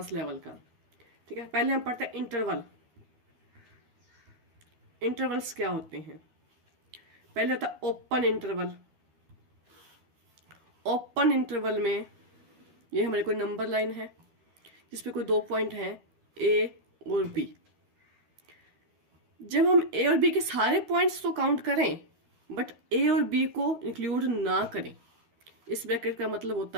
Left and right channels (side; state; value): left; late; 12 ms